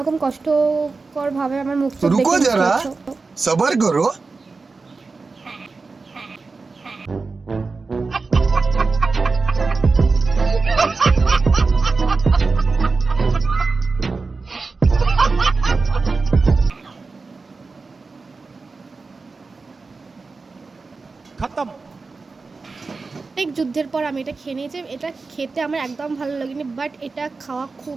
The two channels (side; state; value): left; quieter; 4.1 dB